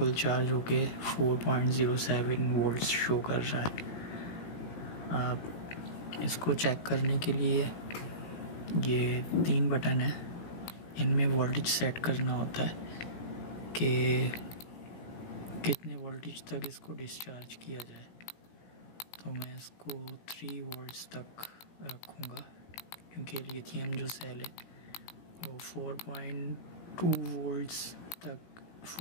चार्ज होके 4.07 वोल्ट शो कर रहा है। अब इसको चेक करने के लिए ये 3 बटन है, इनमें वोल्टेज सेट करना होता है कि कितने वोल्टेज तक इसको डिस्चार्ज किया जाए। तो मैं इसको 3 वोल्ट्स तक रखूँगा क्योंकि लिथियम जो सेल है वो 4.2 वोल्ट्स तक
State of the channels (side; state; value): right; late; 17 ms